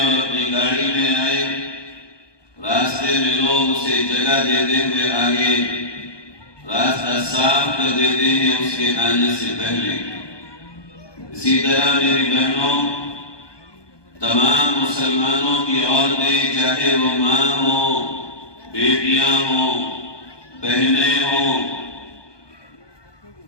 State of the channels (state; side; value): late; right; 1.2 ms